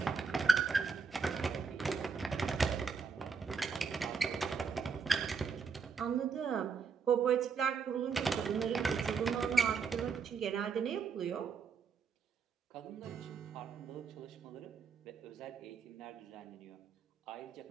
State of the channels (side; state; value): left; quieter; 5.5 dB